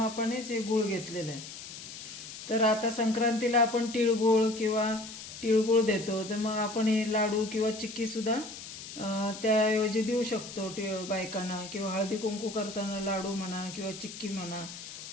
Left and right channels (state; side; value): noise; left; hiss, 12 dB below the sound